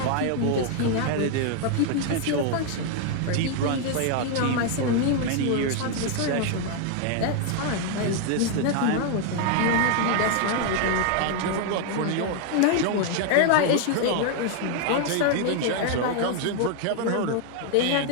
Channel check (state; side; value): different; both; correlation 0.00